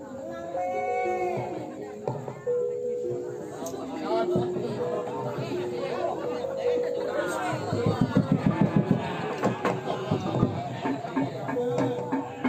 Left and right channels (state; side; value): identical; both; correlation 1.00